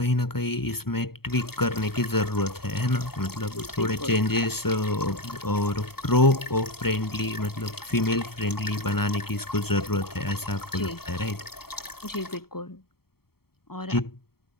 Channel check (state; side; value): late; right; 0.95 ms